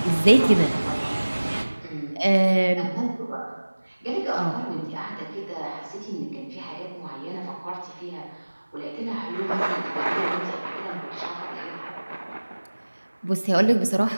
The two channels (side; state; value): both; inverted; correlation -1.00